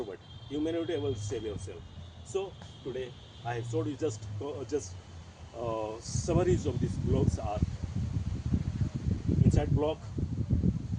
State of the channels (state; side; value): identical; both; correlation 1.00